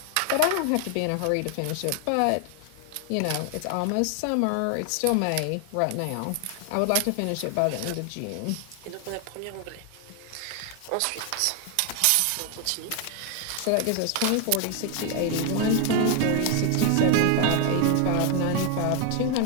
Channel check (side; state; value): both; different; correlation 0.00